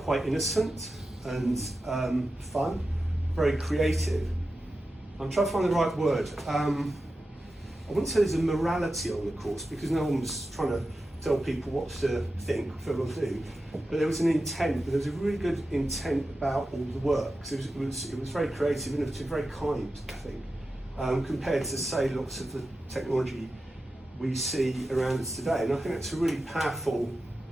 quite innocent and fun, very creative. I'm trying to find the right word. I wouldn't say there's a morality on the course because no one was trying to tell people what to think, what to do. But there was an intent. There was a really good intent about all the work. So it was very creative, innovative, very kind, I think, compared to say lots of the technology we see around us today. And I think that's a really powerful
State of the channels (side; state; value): both; normal; correlation 0.92